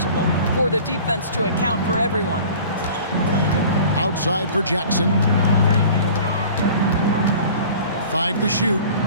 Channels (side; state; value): both; inverted; correlation -0.44